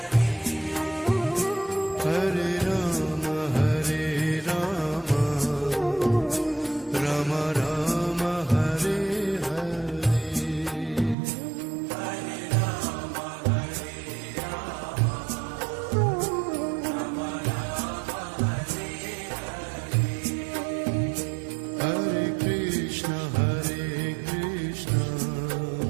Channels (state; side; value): drops out; left; at 11.2 s